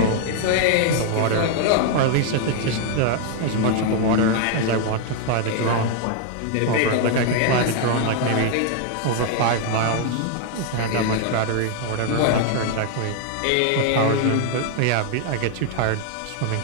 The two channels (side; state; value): both; different; correlation 0.00